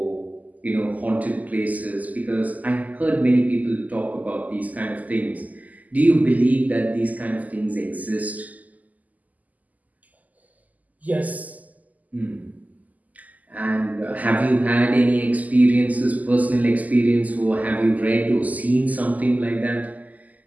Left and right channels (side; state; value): left; late; 0.078 ms